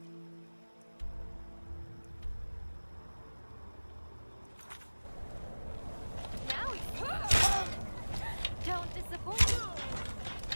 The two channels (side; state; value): both; inverted; correlation -1.00